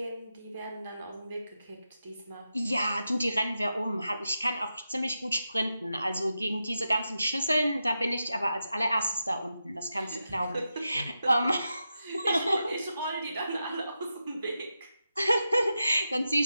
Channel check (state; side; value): inverted; both; correlation -0.89